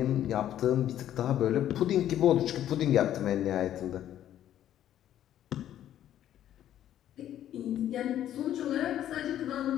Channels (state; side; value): quieter; right; 11.5 dB